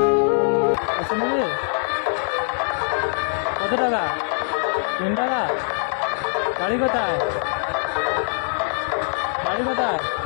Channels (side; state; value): right; silent; digital silence